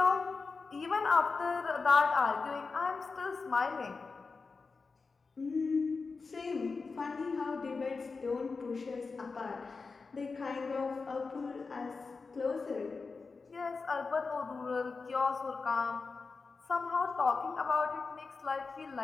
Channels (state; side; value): quieter; right; 4.4 dB